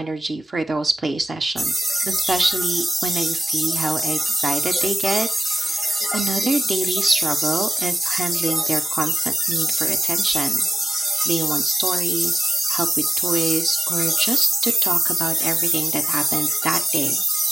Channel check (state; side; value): normal; both; correlation 0.91